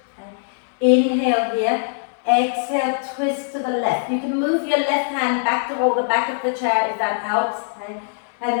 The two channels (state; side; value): silent; right; digital silence